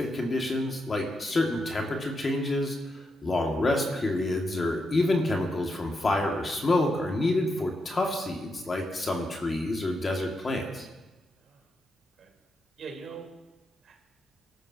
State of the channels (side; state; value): both; normal; correlation 0.84